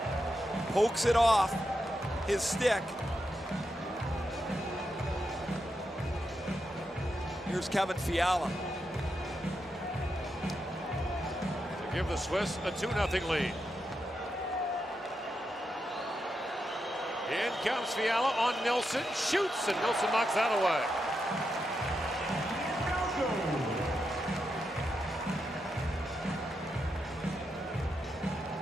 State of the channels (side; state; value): both; normal; correlation 0.85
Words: pokes it off his stick. Here's Kevin Fiala. To give the Swiss a 2-0 lead. In comes Fiala on Nilsson. Shoots, and Nilsson knocks that away.